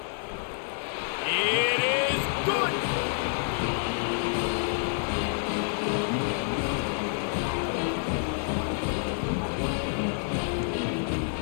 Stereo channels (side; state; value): right; silent; 59 dB below the other